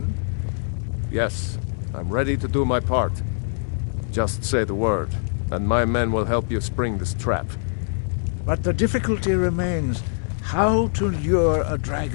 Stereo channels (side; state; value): right; silent; 63 dB below the other